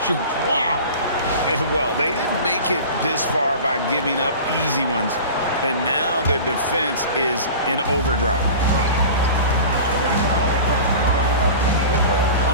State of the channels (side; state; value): both; inverted; correlation -0.36